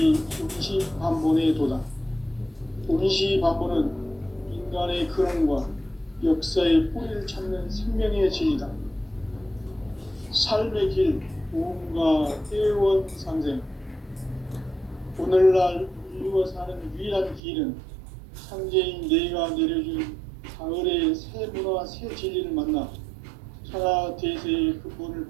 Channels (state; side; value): drops out; left; at 17.4 s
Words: 운시반본의 도다. 운시반본은 인간의 근원과 역사의 뿌리를 찾는 생명의 진이다. 삶의 길, 무언가 회원 상생. 오늘날 인류가 사는 유일한 길은 상제인 내가 내려준 가을의 새 문화, 새 진리를 만나 천하 대세의 근본을